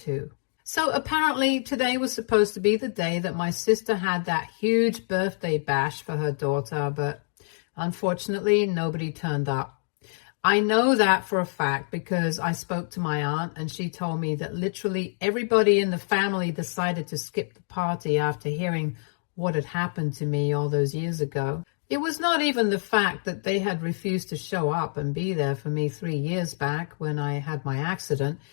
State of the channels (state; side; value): silent; right; digital silence